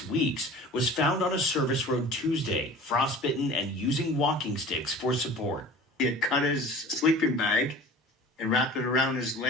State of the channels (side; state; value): both; normal; correlation 0.41